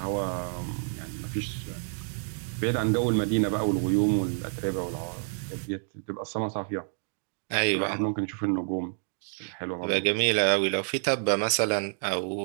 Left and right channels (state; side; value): silent; left; 59 dB below the other